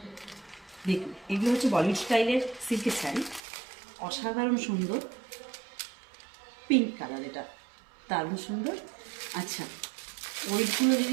দেখুন, এগুলো হচ্ছে বলিউড স্টাইলের সিল্কের শাড়ি, অসাধারণ সুন্দর। পিঙ্ক কালার, এটা দারুণ সুন্দর। আচ্ছা, ওয়েটগুলো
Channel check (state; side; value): drops out; left; at 3.4 s